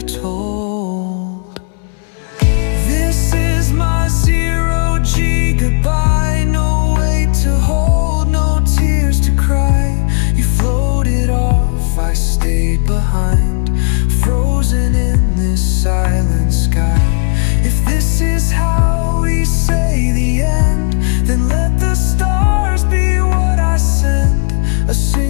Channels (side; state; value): right; silent; 56 dB below the other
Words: This is my 0G goodbye. No weight to hold, no tears to cry. You floated off, I stayed behind, frozen in this silent sky. If this is how we say the end, then let the stars be what I send. A